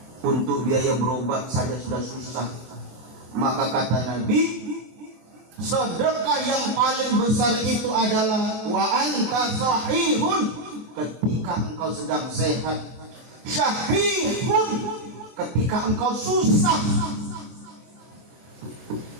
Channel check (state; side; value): late; left; 23 ms